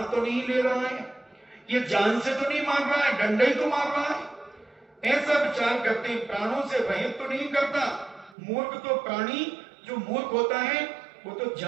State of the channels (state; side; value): drops out; left; at 8.3 s